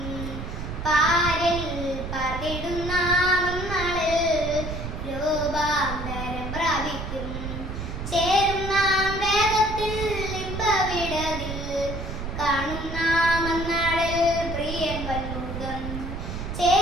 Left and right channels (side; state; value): right; noise; rumble, 6 dB below the sound